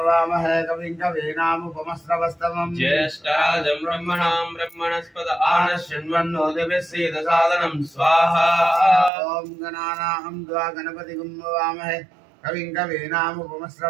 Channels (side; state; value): left; drops out; at 9.1 s